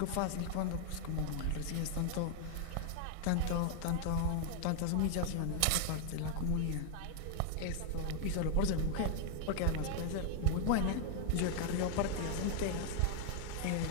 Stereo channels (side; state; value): both; different; correlation 0.00